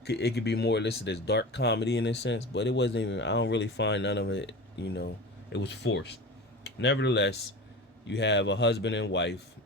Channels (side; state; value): both; normal; correlation 0.31